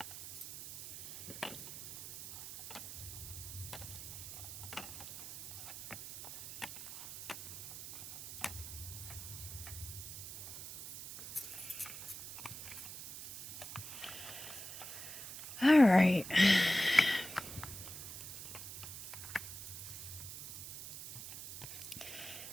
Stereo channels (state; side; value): noise; right; hiss, 10 dB below the sound